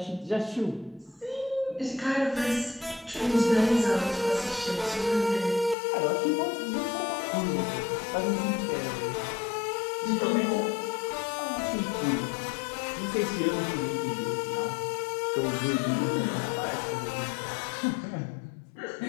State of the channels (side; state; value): right; drops out; at 5.8 s